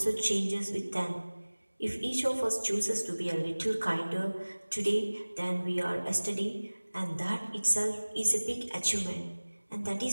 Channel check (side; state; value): both; inverted; correlation -1.00